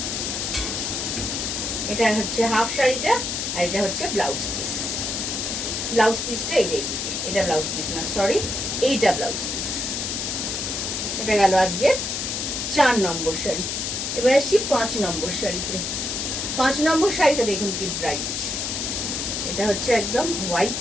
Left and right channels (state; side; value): noise; left; hiss, 2 dB below the sound